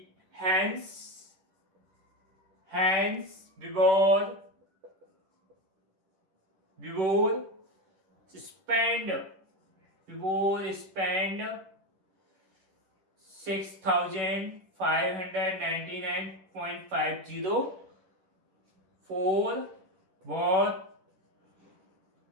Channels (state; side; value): late; left; 10 ms